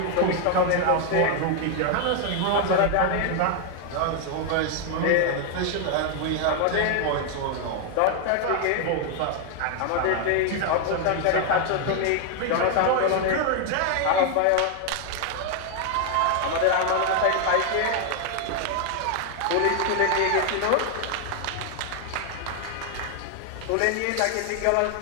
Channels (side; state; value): both; different; correlation 0.00